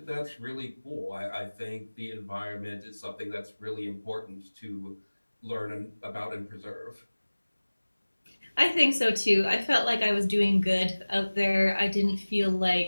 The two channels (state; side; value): inverted; both; correlation -1.00